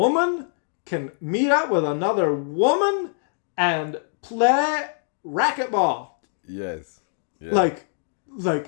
can meet up with another woman and play racquetball. Yes. Yeah. Like,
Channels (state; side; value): silent; right; digital silence